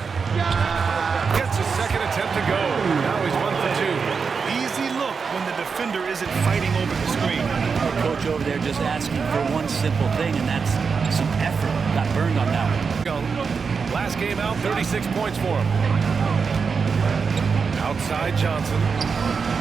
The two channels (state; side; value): quieter; left; 5.5 dB